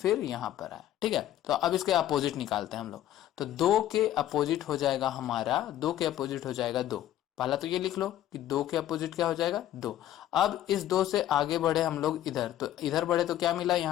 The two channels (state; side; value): quieter; right; 12.7 dB